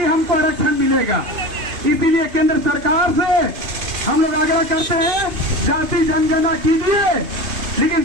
हमको आरक्षण मिलेगा। इसीलिए केंद्र सरकार से हम लोग आग्रह करते हैं, जाति जनगणना कीजिए, लेकिन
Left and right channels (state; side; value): late; left; 2.5 ms